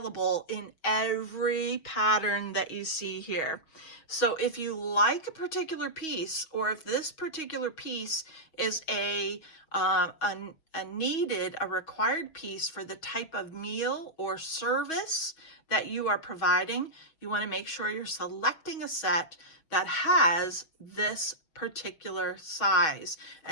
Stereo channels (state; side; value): late; right; 6.2 ms